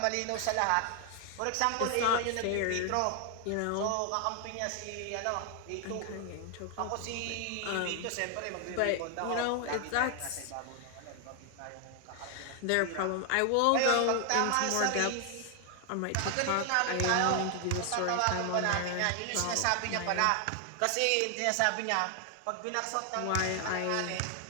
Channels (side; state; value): both; different; correlation 0.00